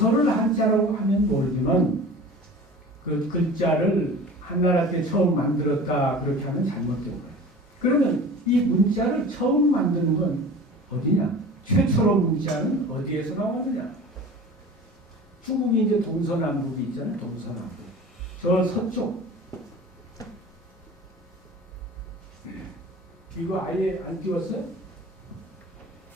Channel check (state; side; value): normal; both; correlation 0.39